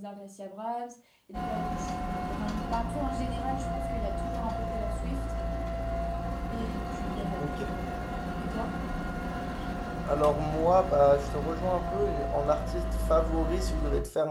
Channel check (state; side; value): identical; both; correlation 1.00